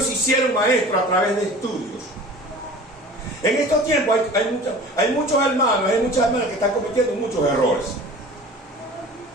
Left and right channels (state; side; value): normal; both; correlation 0.41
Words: se hicieron maestros a través de estudios. En estos tiempos hay muchos hermanos, hay muchas hermanas que están cometiendo muchos errores.